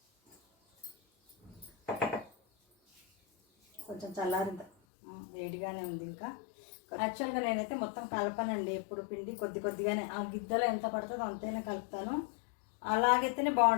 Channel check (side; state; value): right; drops out; at 4.7 s